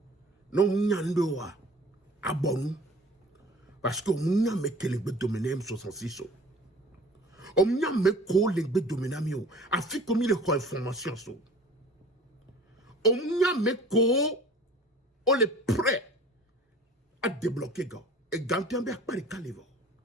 non munyando a bonu. Parce que munya me kelebe dominer M66. On munya me ko lengbe dominer mio. Afi comme il est quoi information so. On munya me ko on est prêt à débloquer gars. Et Gantiambe a pas de calibre.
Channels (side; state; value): both; normal; correlation 0.46